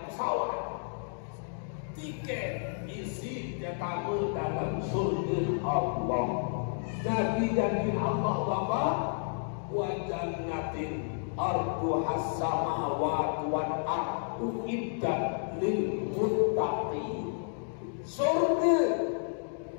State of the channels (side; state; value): right; silent; digital silence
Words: pesawat. Tiket isi jatamu dalam surga Allah. Nabi janji Allah Bapak, wa jannatin arduhas samawati wal ardu iddat lil muttaqin. Surga